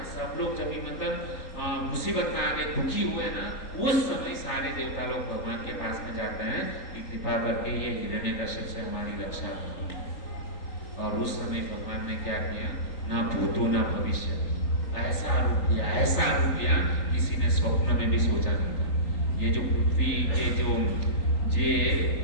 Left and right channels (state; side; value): late; right; 3.8 ms